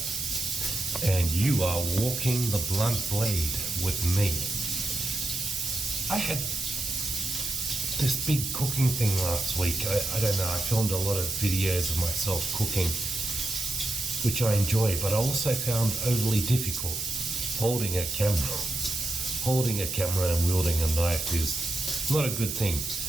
and you are walking the blunt blade with me. I had this big cooking thing last week. I don't know, I filmed a lot of videos of myself cooking, which I enjoy, but I also found overly difficult. Holding a camera and wielding a knife is not a good thing.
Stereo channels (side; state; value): right; noise; hiss, 4 dB below the sound